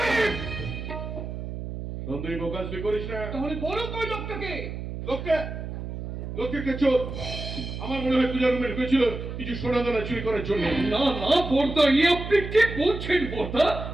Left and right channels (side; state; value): right; noise; hum, 7 dB below the sound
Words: সন্দীপ প্রকাশ তুই করিস না। তাহলে বলো কই লোকটাকে? লোককে চোর। আমার মনে হয় পূজার রুমে ঢুকেছিল কিছু সোনা দানা চুরি করার জন্য। না না বর্দা, এ আপনি কি বলছেন বর্দা?